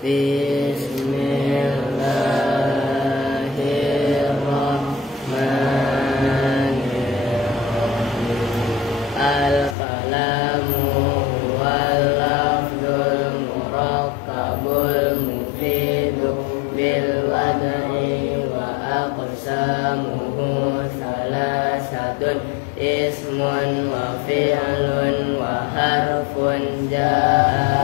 Bismillahirrahmanirrahim. Al-kalamu wal lafzul murakkabul mufidu bil wad'i wa aqsamuhu salasatun ismun wa fi'lun wa harfun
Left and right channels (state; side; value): drops out; right; at 9.8 s